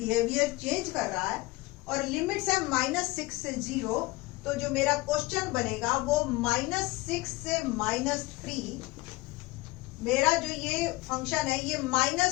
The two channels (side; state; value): right; quieter; 21.1 dB